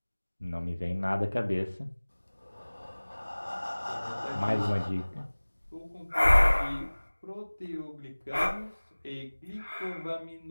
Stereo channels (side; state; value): both; inverted; correlation -1.00